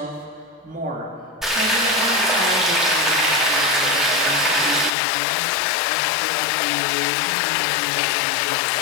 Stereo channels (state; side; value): drops out; right; at 4.9 s